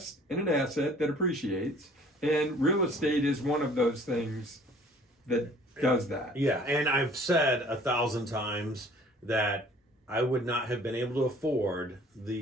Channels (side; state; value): both; normal; correlation 0.53